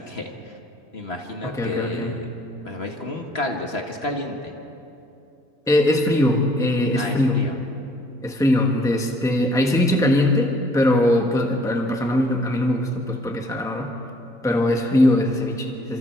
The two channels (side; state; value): both; normal; correlation 0.60